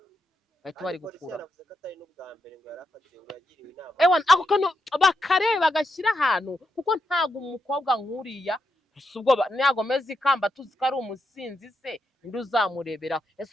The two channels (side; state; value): both; normal; correlation 0.83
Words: bahita bari gukura ako kantu bakareba bagashyira ahantu kuko ntabwo umukobwa nk'uriya ntabwo ameze ikamba tuzi ko ari umusinzi se ninde uzamureberaho ese